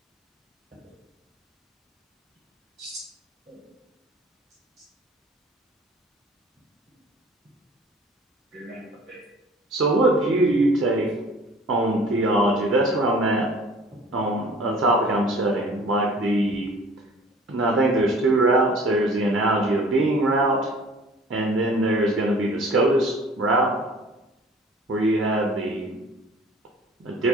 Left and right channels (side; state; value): both; normal; correlation 0.49